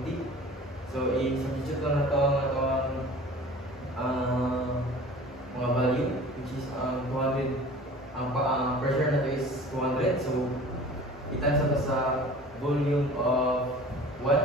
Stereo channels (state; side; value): normal; both; correlation 0.43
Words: So i-substitute lang nato mga value, which is 200. Ang pressure na to is 200. So i-times nato sa volume of